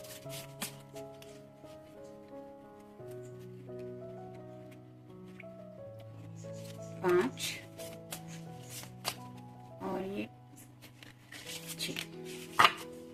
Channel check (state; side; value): identical; both; correlation 1.00